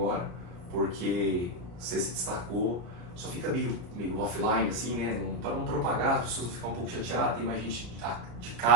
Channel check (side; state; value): left; late; 34 ms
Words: porque você se destacou, só fica meio offline assim, né, para não propagar, as pessoas não ficam um pouco chateadas, tem mais gente de